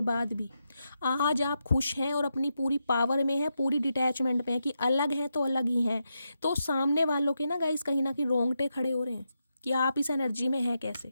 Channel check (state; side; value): inverted; both; correlation -0.85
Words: बाद भी आज आप खुश हैं और अपनी पूरी पावर में है, पूरी डिटैचमेंट में है कि अलग हैं तो अलग ही हैं, तो सामने वालों के ना गाइस कहीं ना कहीं रोंगटे खड़े हो रहे हैं कि आप इस एनर्जी में हैं